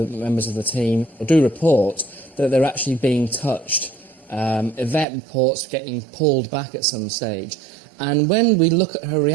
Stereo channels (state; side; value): drops out; left; at 5.1 s